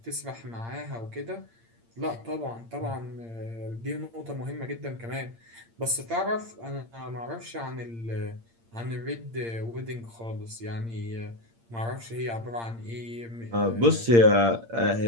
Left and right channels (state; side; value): late; left; 8.7 ms